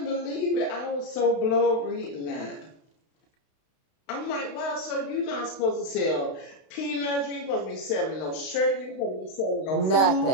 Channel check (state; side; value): late; right; 32 ms